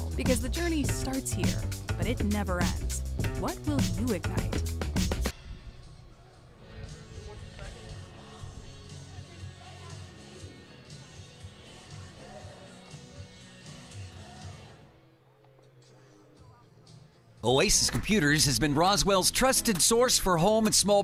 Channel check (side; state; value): both; identical; correlation 1.00